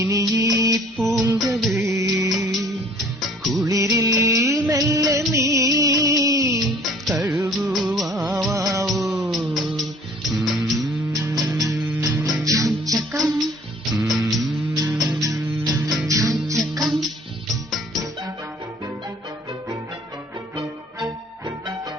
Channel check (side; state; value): both; normal; correlation 0.54